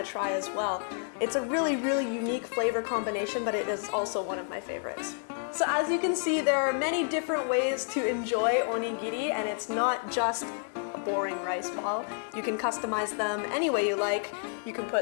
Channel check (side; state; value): right; silent; 57 dB below the other